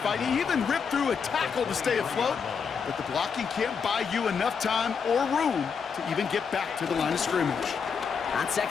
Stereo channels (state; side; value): quieter; right; 6.2 dB